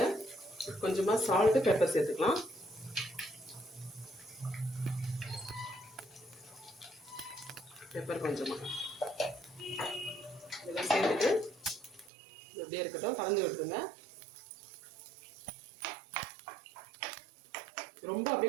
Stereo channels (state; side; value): drops out; left; at 12.1 s